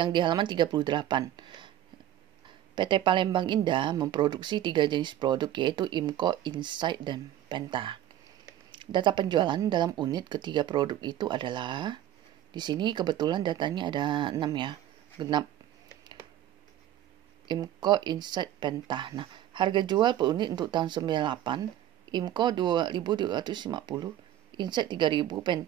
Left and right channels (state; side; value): quieter; left; 12.2 dB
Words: 38. PT Palembang Indah memproduksi 3 jenis produk yaitu IMCO, Insight, dan Penta. Data penjualan dalam unit ketiga produk itu adalah di sini kebetulan datanya ada 6 ya. Genap. IMCO, Insight, Penta. Nah, harga jual per unit untuk tahun 98, IMCO 2.250, Insight 3.000,